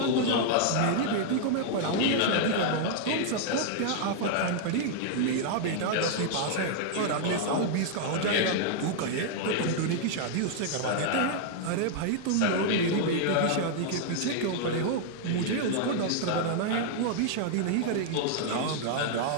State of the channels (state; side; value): different; both; correlation -0.01